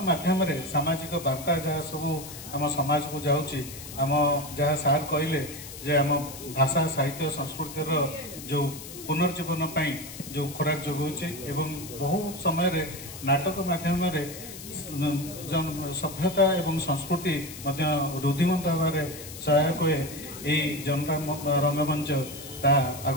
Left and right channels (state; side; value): noise; left; hiss, 13 dB below the sound